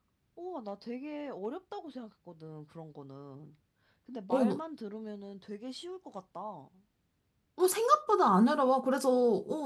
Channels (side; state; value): both; identical; correlation 1.00